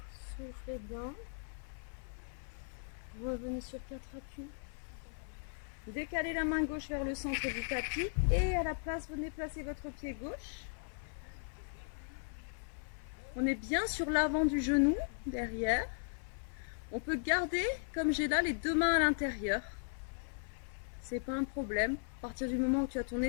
Soufflez bien. Revenez sur 4 appuis. Décalez la main gauche vers le centre du tapis et à la place, venez placer votre pied gauche. On est bien sur l'avant du genou, derrière. On peut garder, comme j'ai là, les deux mains à l'intérieur. C'est pas un problème. À partir du moment où tu as ton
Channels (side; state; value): right; silent; 53 dB below the other